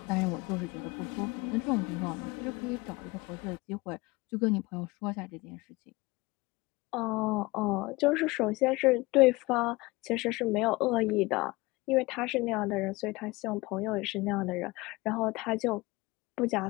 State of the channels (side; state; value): right; quieter; 22.5 dB